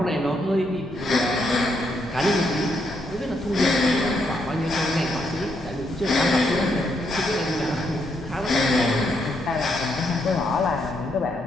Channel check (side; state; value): both; normal; correlation 0.77